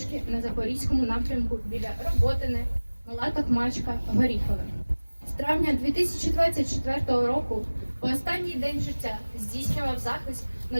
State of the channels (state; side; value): inverted; both; correlation -1.00